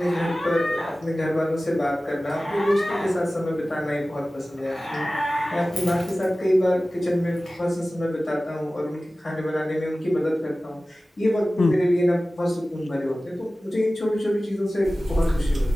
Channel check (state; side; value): normal; both; correlation 0.97